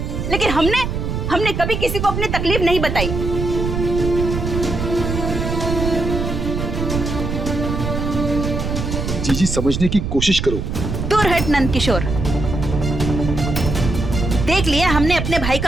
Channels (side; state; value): right; noise; rumble, 3 dB below the sound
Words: लेकिन हमने कभी किसी को अपनी तकलीफ नहीं बताई। जीजी समझने की कोशिश करो। दूर हट नंद किशोर, देख लिया हमने अपने भाई